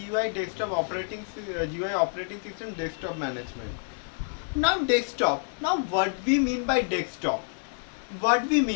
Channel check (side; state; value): right; silent; 59 dB below the other